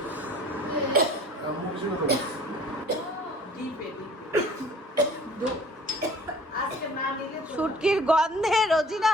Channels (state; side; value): normal; both; correlation 0.50